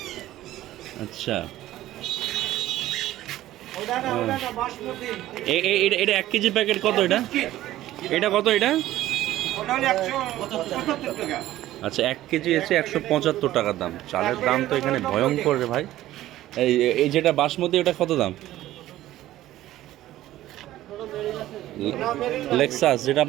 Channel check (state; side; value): quieter; left; 14.6 dB